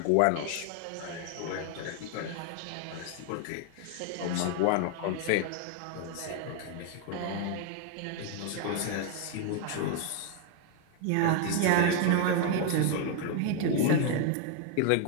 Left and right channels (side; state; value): both; different; correlation 0.00